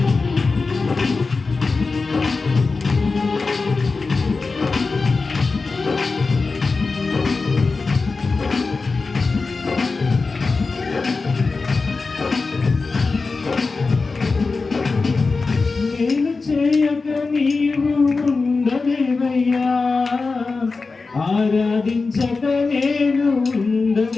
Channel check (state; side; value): quieter; right; 4.1 dB